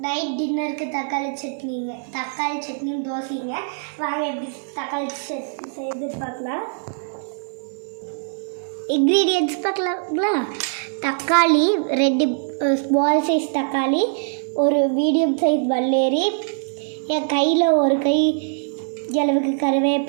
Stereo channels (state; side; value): silent; left; 56 dB below the other